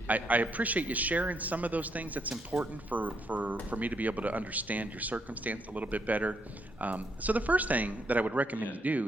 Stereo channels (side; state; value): both; normal; correlation 0.75